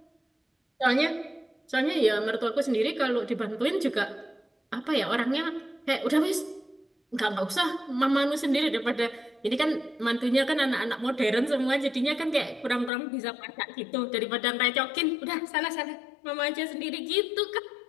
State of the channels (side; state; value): right; drops out; at 12.9 s